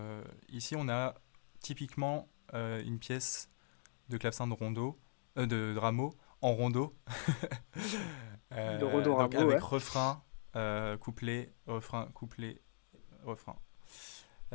ici on a typiquement une pièce de clavecin de rondo, de Rameau, en rondo. De Rodon Donc Rameau, avec ouais. refrain, couplet, refrain, couplet, refrain.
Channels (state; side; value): silent; right; digital silence